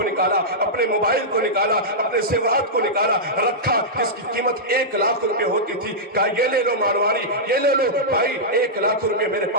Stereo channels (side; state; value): both; normal; correlation -0.11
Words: نکالا، اپنے موبائل کو نکالا، اپنے زیورات کو نکالا، رکھا، جس کی قیمت 1 لاکھ روپے ہوتی تھی، کہا یہ لے لو مارواڑی، یہ لے لو بھائی، 1 لاکھ روپے میرے